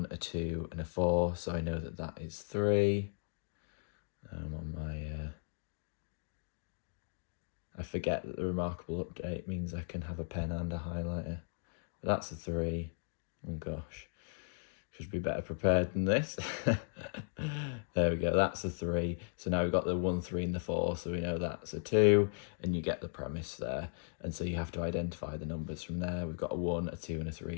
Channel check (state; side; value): silent; right; digital silence